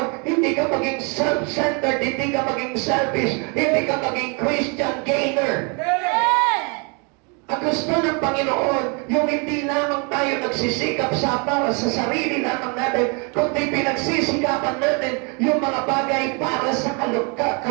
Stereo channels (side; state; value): left; quieter; 33.7 dB